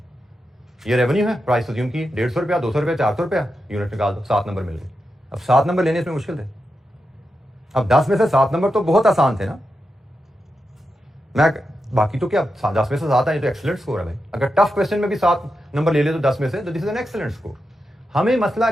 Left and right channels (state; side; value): normal; both; correlation 0.88